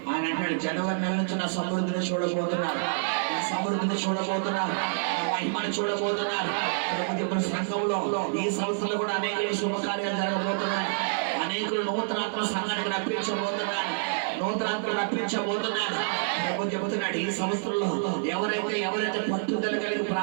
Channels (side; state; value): left; silent; 55 dB below the other